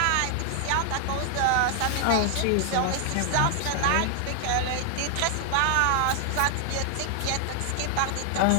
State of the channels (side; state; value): both; different; correlation 0.00